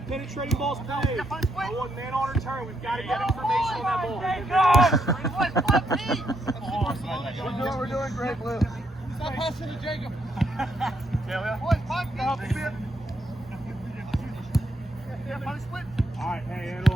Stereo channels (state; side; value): normal; both; correlation 0.76